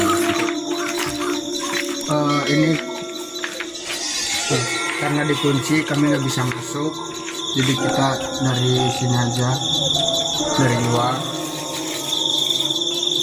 Ini karena dikunci kami nggak bisa masuk, jadi kita dari sini aja, dari luar.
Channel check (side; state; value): both; identical; correlation 1.00